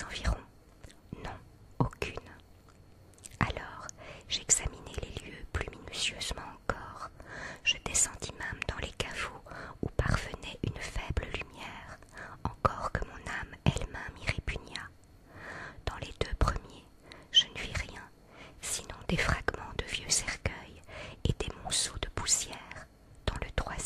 environs. Non, aucune. Alors, j'examinai les lieux plus minutieusement encore. Je descendis même dans les caveaux où parvenait une faible lumière, encore que mon âme elle-même y répugna. Dans les deux premiers, je ne vis rien, sinon des fragments de vieux cercueils et des monceaux de poussière. Dans le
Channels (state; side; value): identical; both; correlation 1.00